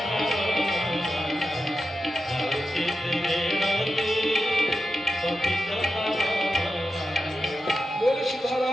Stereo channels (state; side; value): normal; both; correlation 0.90